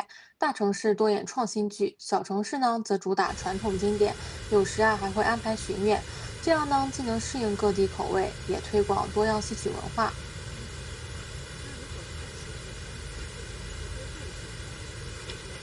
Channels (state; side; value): identical; both; correlation 1.00